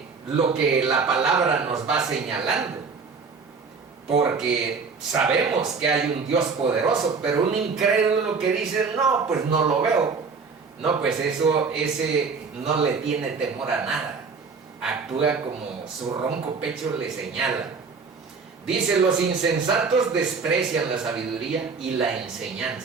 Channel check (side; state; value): left; quieter; 5.0 dB